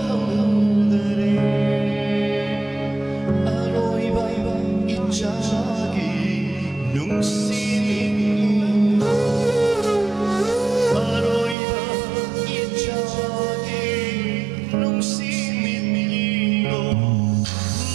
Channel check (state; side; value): drops out; left; at 11.6 s